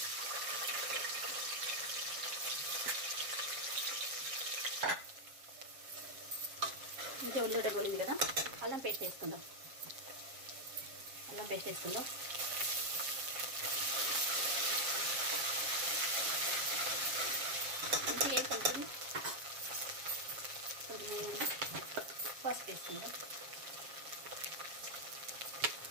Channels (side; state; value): left; late; 7.5 ms